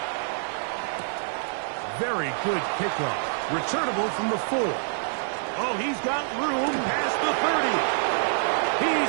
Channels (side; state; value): left; silent; digital silence